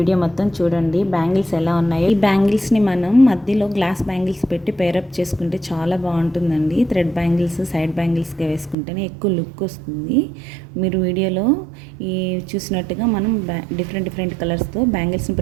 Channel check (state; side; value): drops out; left; at 8.8 s